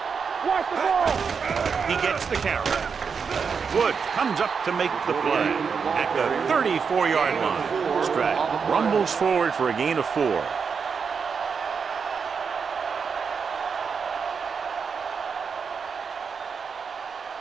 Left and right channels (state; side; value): quieter; left; 5.9 dB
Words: watch the ball. He gets the carry. Woods comes up to make the play at the 34-yard line. Stratton rumbles forward for a gain of 4.